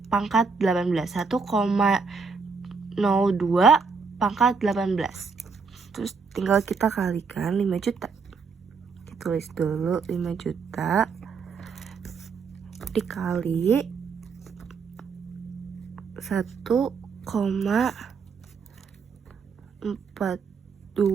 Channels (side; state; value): left; quieter; 5.1 dB